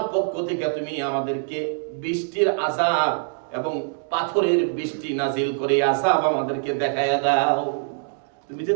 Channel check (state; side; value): silent; left; digital silence